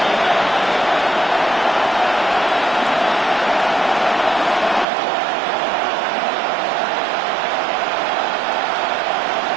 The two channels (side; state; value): left; drops out; at 4.9 s